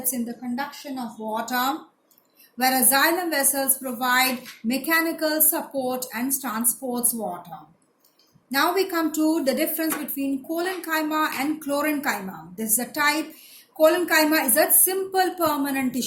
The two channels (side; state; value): both; identical; correlation 1.00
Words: in the conduction of water, whereas xylem vessels provide mechanical support and transports water. Now we come to the difference between collenchyma and chlorenchyma. This is a type. Collenchyma is a simple permanent